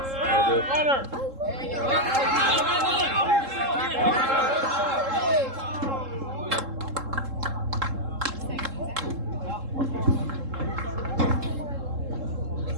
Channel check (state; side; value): late; left; 3.7 ms